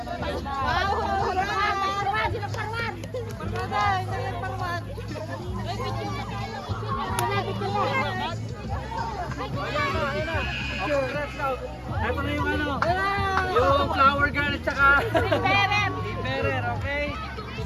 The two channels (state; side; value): identical; both; correlation 1.00